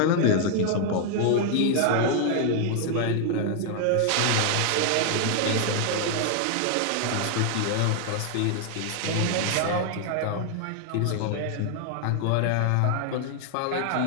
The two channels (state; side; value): different; both; correlation 0.00